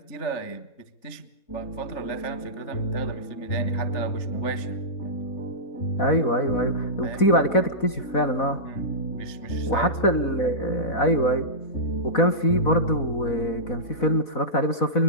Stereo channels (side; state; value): right; late; 4.1 ms